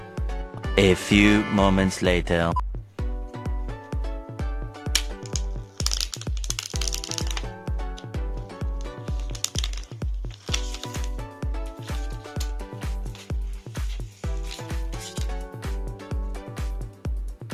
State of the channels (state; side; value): identical; both; correlation 1.00